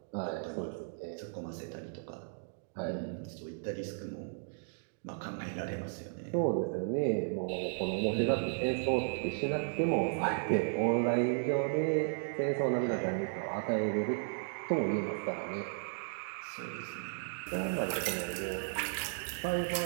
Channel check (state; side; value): silent; left; digital silence